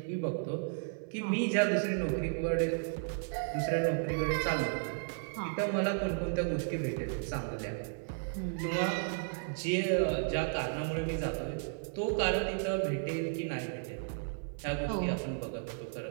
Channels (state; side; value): silent; left; 55 dB below the other